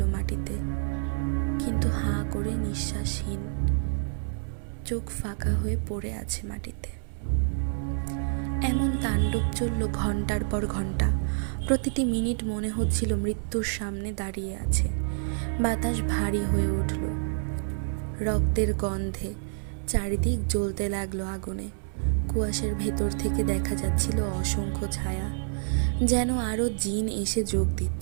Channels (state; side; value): silent; left; 59 dB below the other